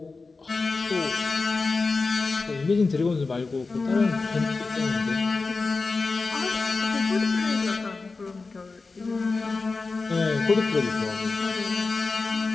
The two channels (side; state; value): right; quieter; 4.0 dB